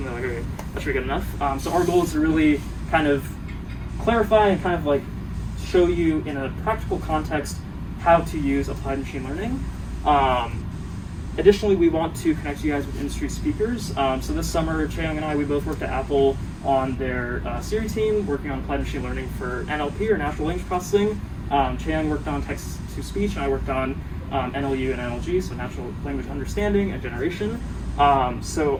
they're okay, that should be good enough. So our goal is to really kind of clarify and kind of show you in a practical context how to use applied machine learning. Additionally, we want to connect you guys with industry speakers. So this summer, Chae Young and I, we both worked at Apple on their Siri team, working on applied machine learning for NLP, or natural language processing. Chae Young worked on text-to-speech, and I worked on NLU and NLG, so natural language understanding and generation. So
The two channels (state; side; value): identical; both; correlation 1.00